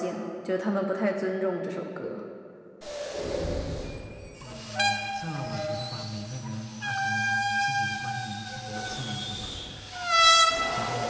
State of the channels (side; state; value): both; identical; correlation 1.00